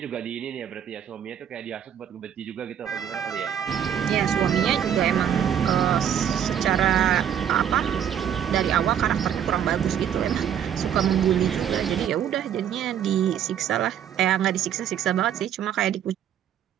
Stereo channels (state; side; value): quieter; left; 9.3 dB